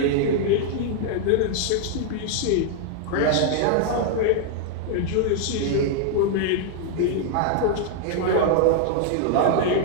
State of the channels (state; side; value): different; both; correlation -0.01